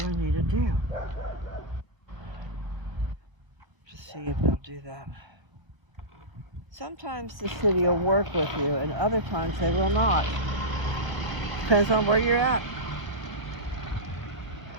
I need to do. Just see if they'll do that. Sometimes the city will work with you, and other times they will not. Depends on where you're at.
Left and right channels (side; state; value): left; late; 1.1 ms